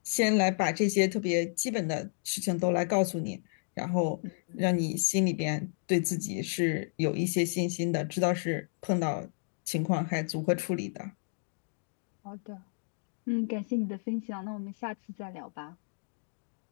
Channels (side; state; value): right; silent; digital silence